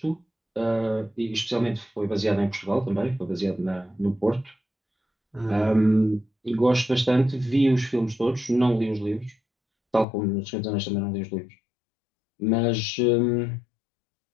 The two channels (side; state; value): right; drops out; at 10.1 s